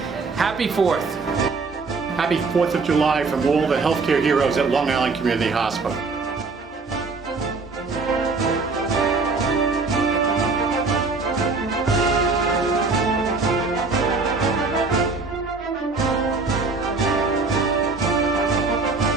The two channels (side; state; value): left; quieter; 4.1 dB